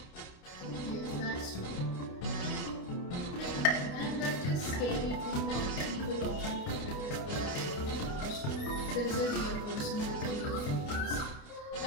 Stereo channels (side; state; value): right; late; 28 ms